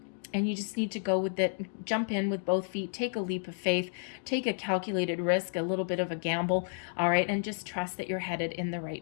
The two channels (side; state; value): right; silent; digital silence